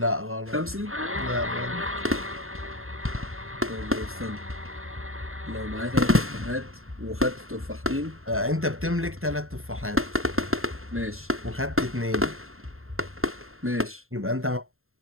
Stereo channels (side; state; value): left; late; 0.61 ms